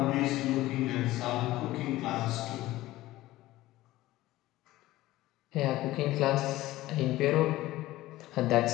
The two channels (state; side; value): quieter; right; 16.8 dB